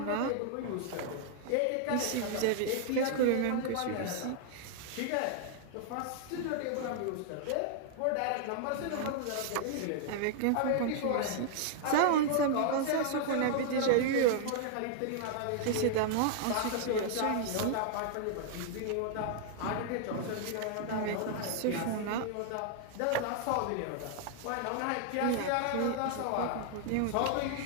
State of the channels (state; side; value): different; both; correlation 0.00